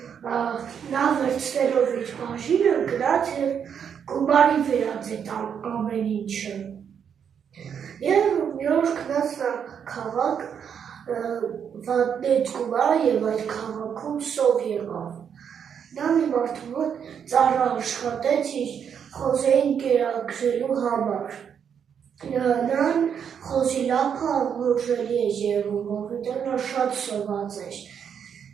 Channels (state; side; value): quieter; left; 7.7 dB